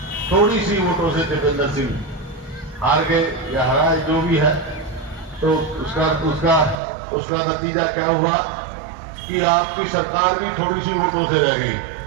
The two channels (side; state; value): left; drops out; at 6.8 s